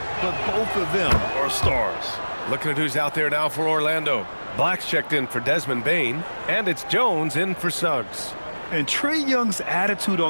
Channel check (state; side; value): inverted; both; correlation -1.00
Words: but both of them are stars. Looking at who's out there now for Orlando. Black's checked in for Desmond Bane, and it's Jones in for Suggs. And Trae Young's attitude